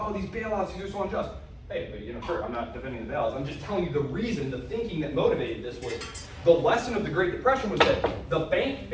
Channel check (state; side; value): identical; both; correlation 1.00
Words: these bailouts, these are so unjust. Hey, but sure, I'm not defending the bailouts. I'm just telling you the reason, the thinking that motivated this was the lesson of the Great Depression was that the bank